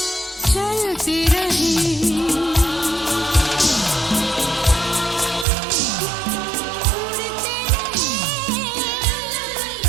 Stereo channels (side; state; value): left; drops out; at 5.5 s